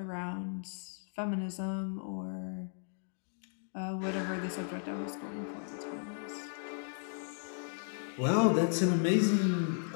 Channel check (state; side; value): silent; right; digital silence